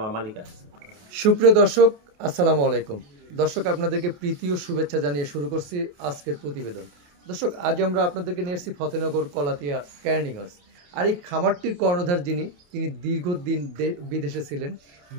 মালিক আসছে। সুপ্রিয় দর্শক, আসসালামু আলাইকুম। দর্শক, আপনাদেরকে প্রীতি ও শুভেচ্ছা জানিয়ে শুরু করছি আজকের প্রতিবেদন। দর্শক, আজ আমরা আপনাদেরকে নিয়ে এসেছি ফতেনগর কলাতিয়া ক্যানিং হাউস। আর এই খামারটির কর্ণধার তিনি দীর্ঘদিন বিদেশে ছিলেন।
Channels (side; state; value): left; late; 28 ms